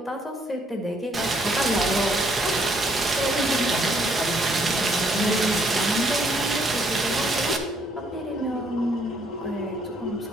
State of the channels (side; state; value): both; normal; correlation 0.68